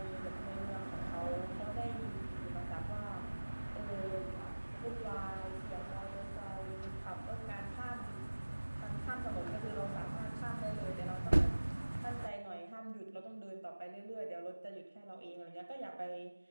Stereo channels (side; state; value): both; inverted; correlation -1.00